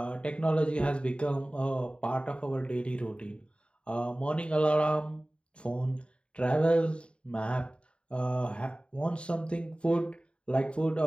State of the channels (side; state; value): right; late; 0.056 ms